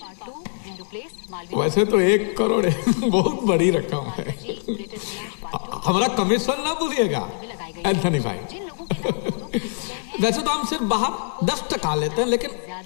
वैसे तो 1 करोड़ बहुत बड़ी रकम है। हमारा कमीशन ना भूलिएगा एंथनी भाई। वैसे तो हम सिर्फ बाहर 10% लेते हैं, लेकिन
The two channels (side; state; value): right; silent; digital silence